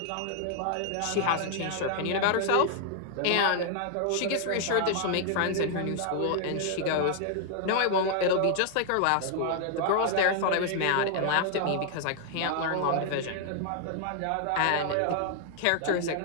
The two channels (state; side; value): different; both; correlation 0.00